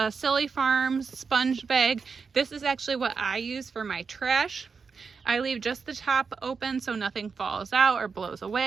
Silly Farms sponge bag. This is actually what I use for my trash. I leave just the top open so nothing falls out or blows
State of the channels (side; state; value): left; quieter; 5.3 dB